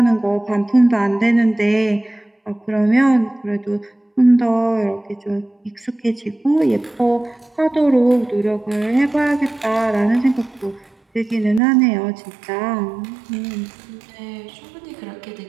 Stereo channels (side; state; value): left; drops out; at 11.6 s